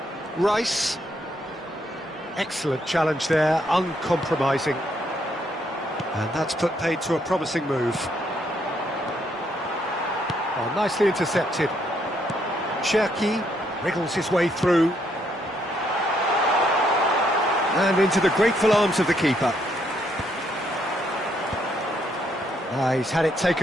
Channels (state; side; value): normal; both; correlation 0.73